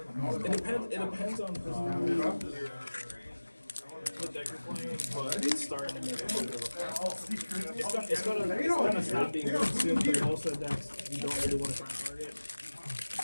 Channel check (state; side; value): inverted; both; correlation -1.00